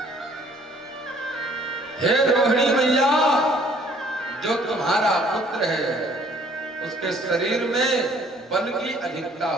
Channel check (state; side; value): normal; both; correlation 0.59